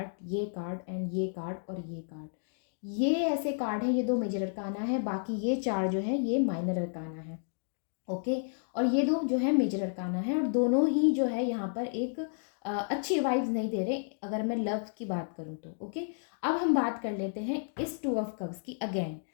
ये कार्ड एंड ये कार्ड और ये कार्ड, ये ऐसे कार्ड हैं। ये 2 मेजर अरकाना है, बाकी ये 4 जो है ये माइनर अरकाना है, ओके। और ये 2 जो है मेजर अरकाना है, और दोनों ही जो है यहाँ पर एक अच्छी वाइब्स नहीं दे रहे अगर मैं लव की बात करूँ तो, ओके। अब हम बात कर लेते हैं इस 2 ऑफ कप्स की अगेन।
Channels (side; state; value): right; silent; digital silence